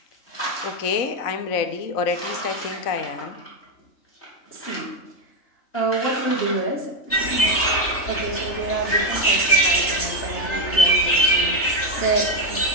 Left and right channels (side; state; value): right; late; 3.3 ms